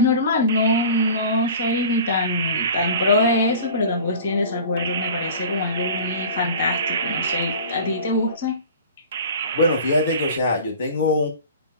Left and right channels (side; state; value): both; inverted; correlation -0.41